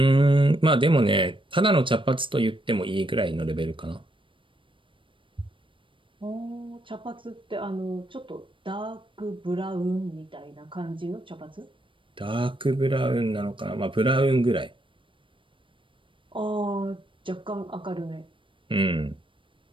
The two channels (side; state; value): left; late; 0.25 ms